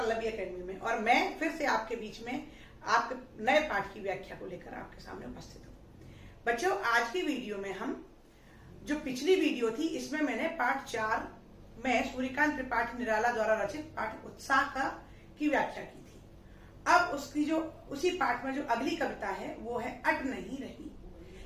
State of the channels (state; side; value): identical; both; correlation 1.00